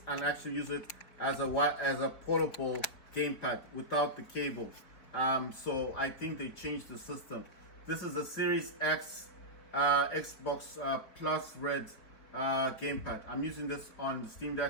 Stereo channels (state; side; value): late; right; 4.5 ms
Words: and actually use it as a portable gamepad without the cable. So I think they changed the system. This is a Series X Xbox Plus Red gamepad. I'm using this on the Steam